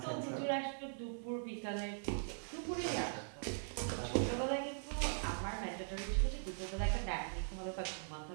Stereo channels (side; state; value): left; silent; digital silence